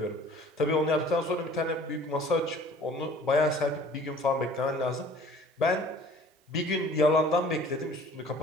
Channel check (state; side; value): normal; both; correlation 0.50